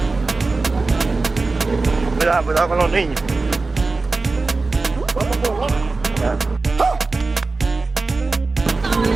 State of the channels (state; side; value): quieter; left; 3.7 dB